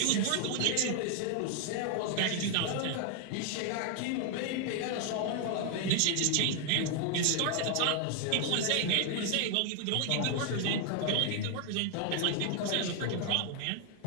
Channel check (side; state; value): both; different; correlation 0.00